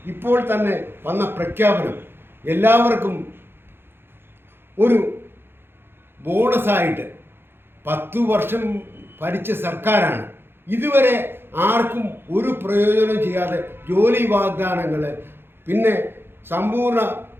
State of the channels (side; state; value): left; late; 0.11 ms